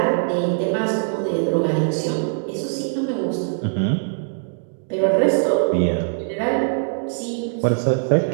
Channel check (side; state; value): left; silent; digital silence